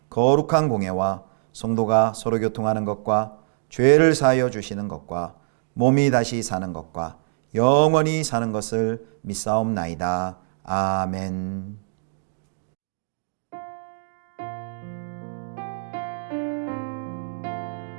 거룩한 공예와 성도가 서로 교통하는 것과 죄를 사하여 주시는 것과 몸이 다시 사는 것과 영원히 사는 것을 믿사옵나이다. 아멘.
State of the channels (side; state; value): left; silent; digital silence